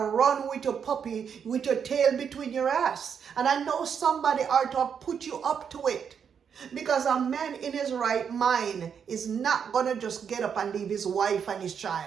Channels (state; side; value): quieter; left; 7.3 dB